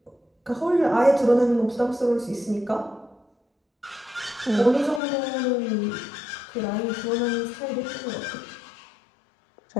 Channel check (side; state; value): right; drops out; at 5.0 s